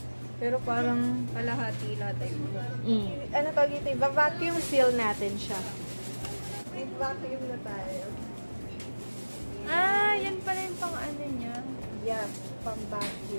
Pero parang kalahati lahat ay bulong. Ano tawag ito? Va-vacuum seal natin siya. Nag-vacuum na tayo. Ah, yan pala yung pang ano niya. Yeah, pang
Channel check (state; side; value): inverted; both; correlation -1.00